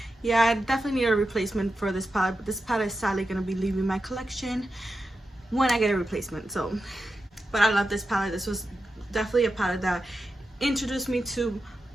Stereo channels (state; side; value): normal; both; correlation 0.90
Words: yeah, I definitely need a replacement for this palette, but this palette is sadly gonna be leaving my collection when I get a replacement. So, but I love this palette. This was definitely a palette that introduced me to